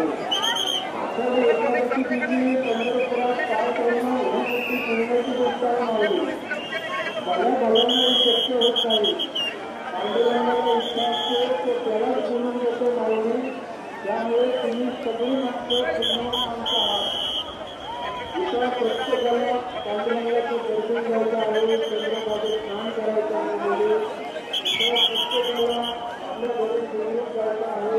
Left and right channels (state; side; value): identical; both; correlation 1.00